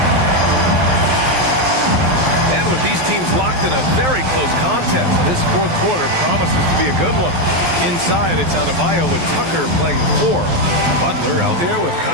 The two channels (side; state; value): left; late; 12 ms